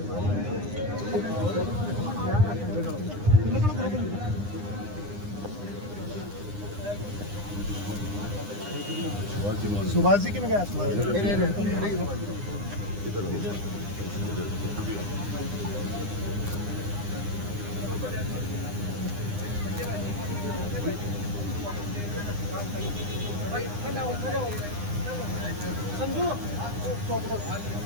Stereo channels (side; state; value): left; late; 9.8 ms